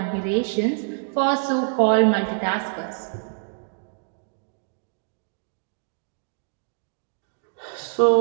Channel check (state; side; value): silent; left; digital silence